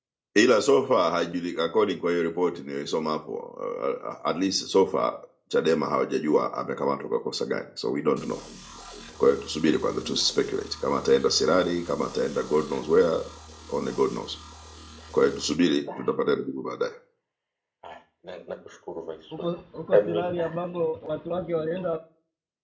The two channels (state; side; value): identical; both; correlation 1.00